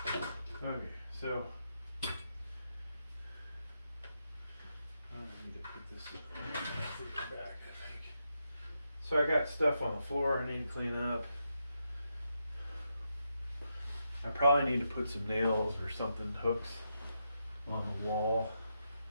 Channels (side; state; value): both; inverted; correlation -0.84